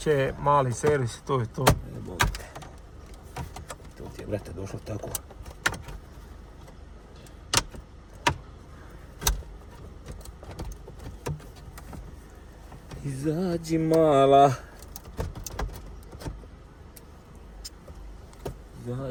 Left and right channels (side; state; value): both; identical; correlation 1.00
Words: mali servis, to je to. Ne boga te. To ti je, brate, došlo tako. Izađi mala.